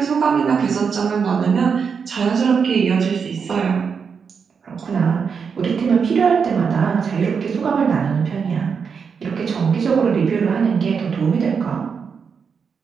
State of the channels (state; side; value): quieter; left; 6.1 dB